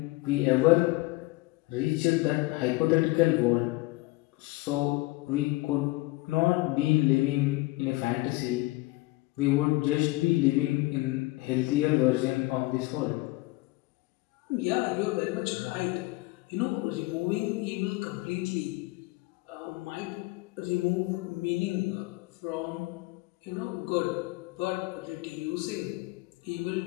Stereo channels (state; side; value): quieter; right; 21.3 dB